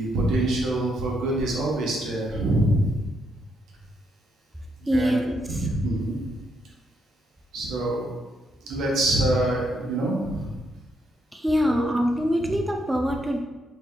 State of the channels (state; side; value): normal; both; correlation 0.77